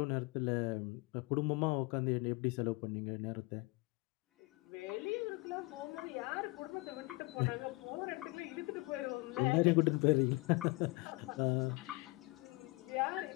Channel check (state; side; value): quieter; right; 25.0 dB